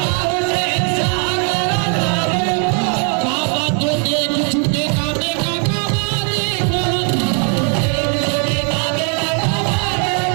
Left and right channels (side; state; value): left; quieter; 39.6 dB